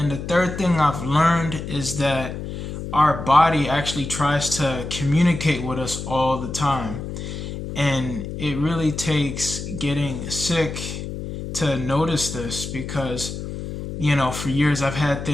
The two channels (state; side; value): noise; left; hum, 7 dB below the sound